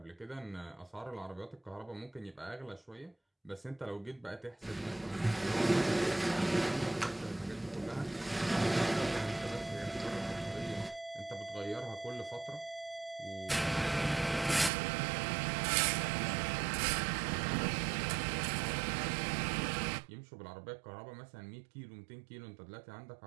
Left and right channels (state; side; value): drops out; left; at 14.7 s